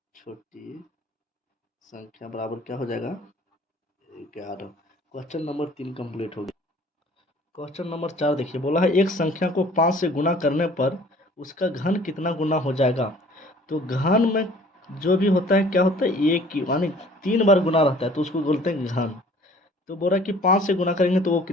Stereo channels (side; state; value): both; normal; correlation 0.52